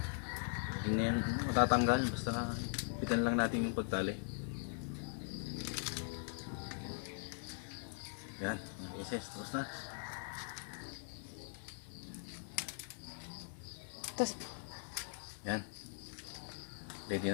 Hindi na yan matatanggal. Basta pitan lang natin yung pagtali. Yan, mga isis, tapos na. Tapos, Yan. Ready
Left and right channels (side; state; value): right; silent; digital silence